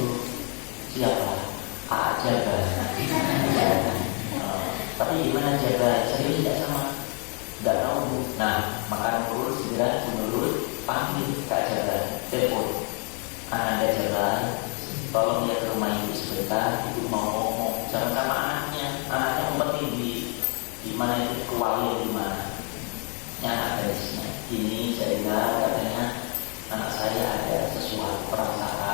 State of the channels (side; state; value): right; quieter; 38.6 dB